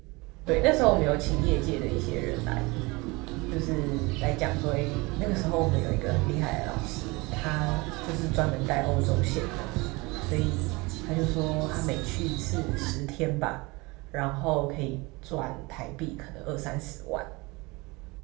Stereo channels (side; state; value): left; quieter; 24.7 dB